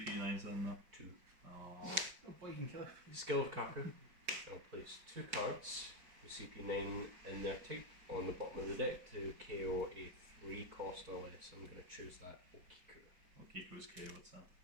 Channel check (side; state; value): left; late; 4.7 ms